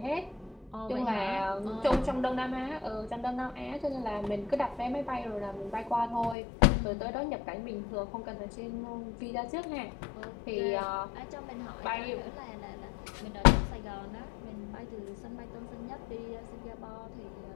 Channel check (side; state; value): right; drops out; at 6.4 s